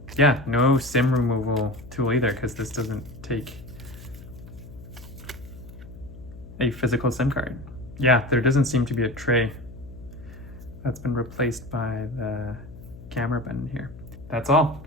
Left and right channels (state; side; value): noise; left; hum, 16 dB below the sound